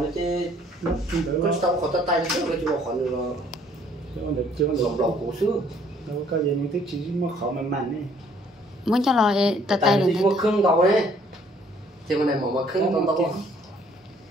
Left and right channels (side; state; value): both; normal; correlation 0.61